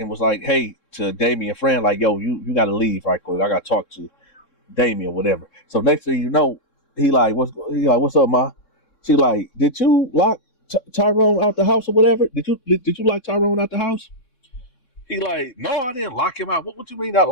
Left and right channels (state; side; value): late; right; 3.7 ms